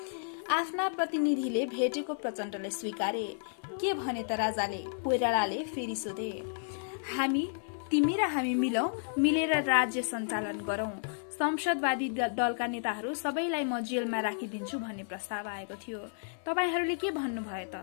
आफ्ना प्रतिनिधिले भेटेको प्रचण्डले स्वीकारे। के भने त राजाले? कोइरालाले फेरि सोधे। तिमी र हामी मिलेर राज्य सञ्चालन गरौं। संसदवादी दलका नेताहरू सबैलाई म जेलमा राखिदिन्छु भन्ने प्रस्ताव आएको थियो। तपाईहरूले के भन्नुभयो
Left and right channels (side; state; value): right; silent; 56 dB below the other